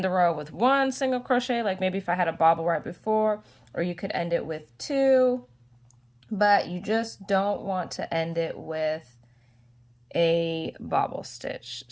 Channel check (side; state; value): both; identical; correlation 1.00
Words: the row with 1 single crochet, like maybe if I had a bobble right before, or you could end it with 2, but you just don't want to end it with a bobble stitch.